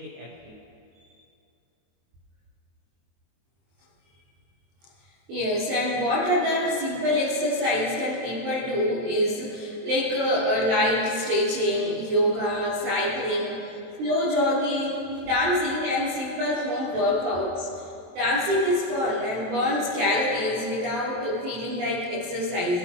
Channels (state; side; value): late; left; 23 ms